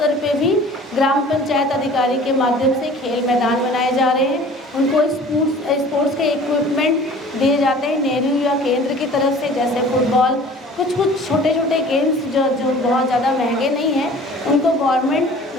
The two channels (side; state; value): both; normal; correlation 0.46